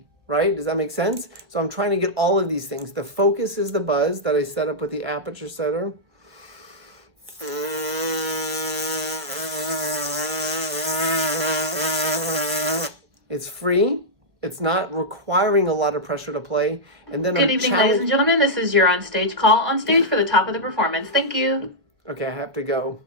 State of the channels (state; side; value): late; left; 1.1 ms